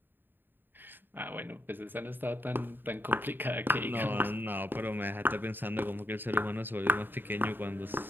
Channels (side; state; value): left; late; 0.094 ms